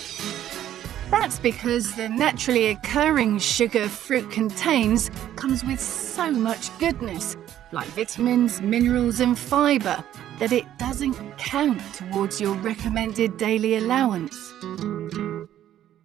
That's because the naturally occurring sugar fruit contains comes with so much goodness, like vitamins, minerals and fibre, that it doesn't count towards your recommended daily allowance.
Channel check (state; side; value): quieter; left; 11.7 dB